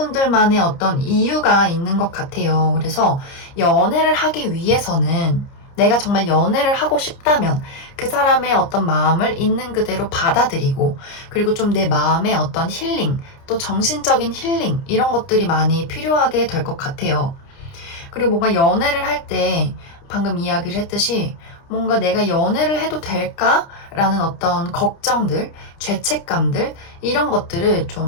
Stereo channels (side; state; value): right; late; 30 ms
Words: 어떤 이유가 있는 것 같아요. 그래서 연애를 하기 위해서는 내가 정말 연애를 하고 싶다면 그 사람의 어떤 마음을 있는 그대로 받아들이고, 그리고 좀 내 마음의 어떤 힐링, 또 정신적인 힐링 이런 것들이 많이 필요하게 될 것 같아요. 그리고 뭔가 연애를 할 때 방금 이야기를 했듯이 뭔가 내가 연애를 해도 될까라는 어떤 걱정들, 죄책감들 이런 것들을